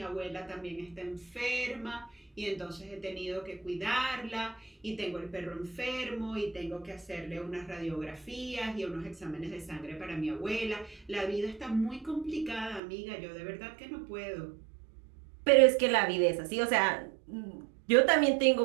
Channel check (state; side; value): drops out; left; at 12.8 s